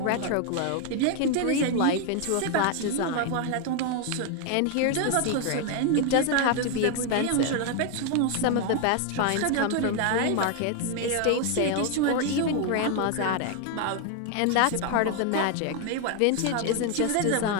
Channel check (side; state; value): both; different; correlation 0.01